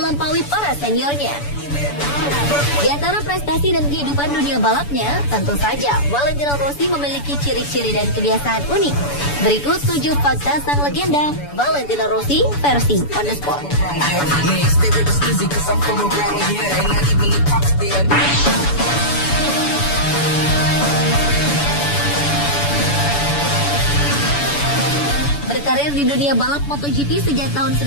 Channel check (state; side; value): late; right; 7.0 ms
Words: para seniornya. Di antara prestasi dan kehidupan dunia balapnya, tentu saja Valentino Rossi memiliki ciri-ciri dan kebiasaan unik. Berikut 7 fakta sang legenda Valentino Rossi versi On The Spot. Berkarir di dunia balap MotoGP sejak tahun